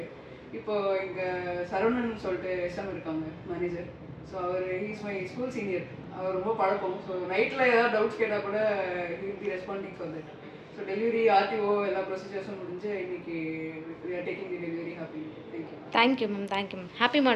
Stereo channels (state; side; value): identical; both; correlation 1.00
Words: இப்போது இங்கே சரவணன் சொல்லிட்டு எஸ்எம் இருக்காங்க மேனேஜர். ஸோ அவர் ஹீஸ் மை ஸ்கூல் சீனியர். அவர் ரொம்ப பழக்கம். ஸோ நைட்டில் ஏதாவது டவுட்ஸ் கேட்டால் கூட he will be responding for that. So delivery RTO எல்லா ப்ரொசீஜர்ஸும் முடிஞ்சு இன்னைக்கு we are taking the delivery happy. Thank you. Thank you ma'am. Thank you ma'am. Happy